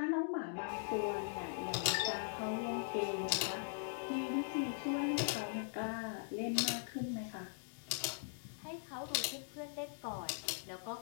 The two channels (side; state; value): right; silent; digital silence